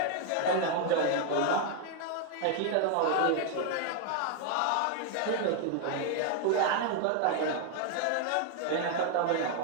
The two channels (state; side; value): different; both; correlation 0.00